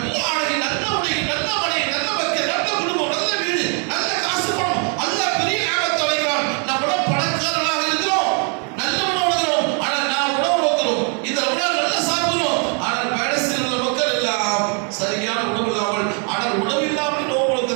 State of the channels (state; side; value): quieter; left; 39.2 dB